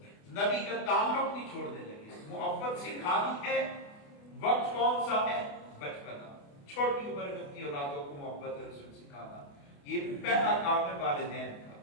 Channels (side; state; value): right; late; 28 ms